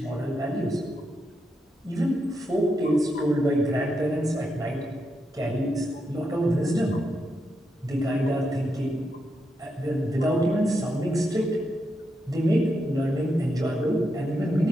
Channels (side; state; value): both; normal; correlation 0.84